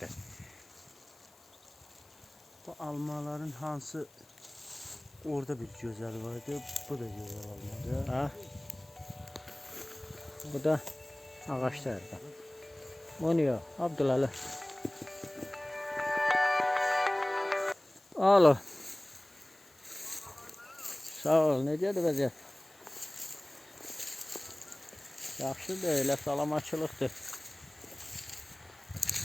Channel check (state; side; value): noise; left; hiss, 28 dB below the sound